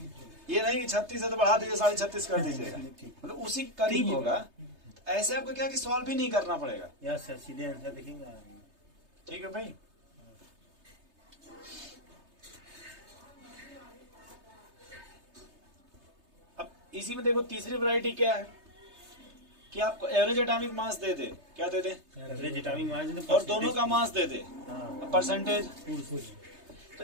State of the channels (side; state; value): left; late; 3.3 ms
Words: ये नहीं कि 36 है तो बढ़ा दीजिए 36.5 कर दीजिएगा, मतलब उसी के करीब होगा। ऐसे आपको क्या कि सॉल्व भी नहीं करना पड़ेगा। यस सर, सीधे आंसर देखेंगे। ठीक है भाई। अब इसी में देखो तीसरी वैरायटी क्या है कि आपको एवरेज एटॉमिक मास दे दे, क्या दे दे? एवरेज एटॉमिक मास और दोनों का मास दे दे, हाँ परसेंटेज। तो